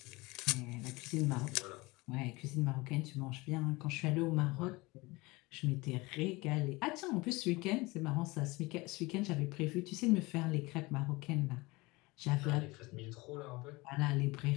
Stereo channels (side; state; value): right; quieter; 23.0 dB